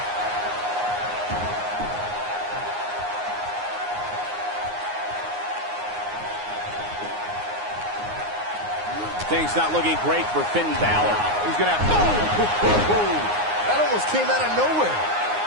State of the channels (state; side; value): late; left; 9.6 ms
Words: Things not looking great for Finn Balor. He's going to have... Oh! That almost came out of nowhere.